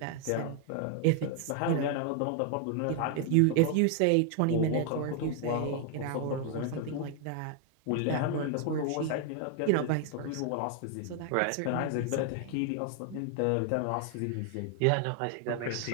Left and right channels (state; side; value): different; both; correlation 0.00